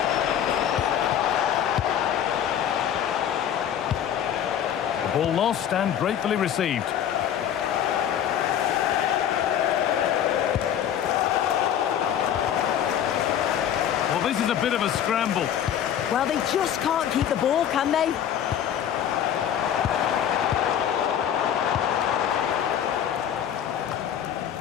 The ball lost and gratefully received. Well, this is a bit of a scramble. Well, they just can't keep the ball, can they?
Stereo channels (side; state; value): right; quieter; 9.7 dB